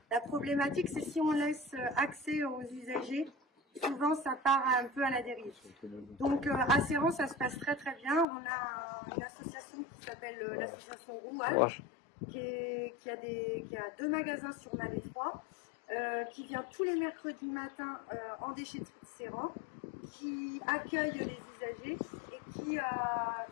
La problématique, c'est si on laisse accès aux usagers, souvent ça part un peu à la dérive. Donc à Serran, ça se passe très très bien. On a une association qui s'appelle l'association Rouage, qui a 2 magasins sur Malais 3, qui vient tous les mercredis matins en déchetterie de Serran, qui accueille les usagers et qui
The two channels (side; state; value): right; drops out; at 8.2 s